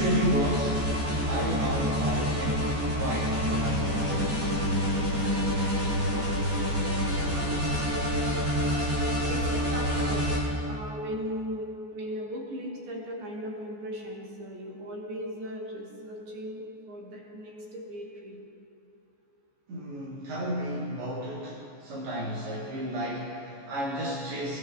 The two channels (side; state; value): left; late; 14 ms